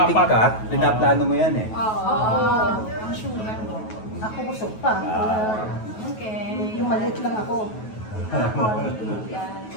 ka, pinaplano mo yan eh. Oo. Ang sugar mo. Ako busog pa. Okay. Yung maliit lang ako.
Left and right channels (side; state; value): right; late; 9.3 ms